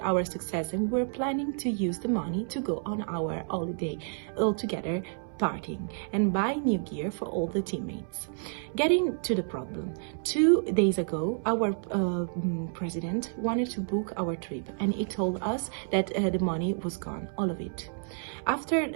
our success, and we were planning to use the money to go on our holiday all together, partying and buy new gear for all the teammates. Getting to the problem, 2 days ago our president wanted to book our trip, and he told us that the money was gone, all of it. After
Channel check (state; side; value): silent; left; 58 dB below the other